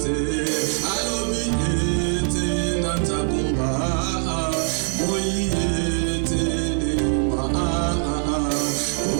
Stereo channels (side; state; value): left; silent; 64 dB below the other